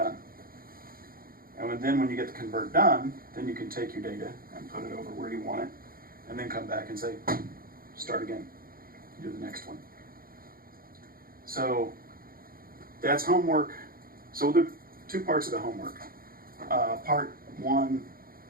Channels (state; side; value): late; left; 0.42 ms